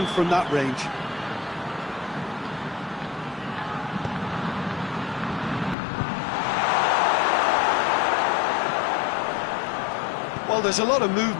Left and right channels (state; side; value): drops out; right; at 5.8 s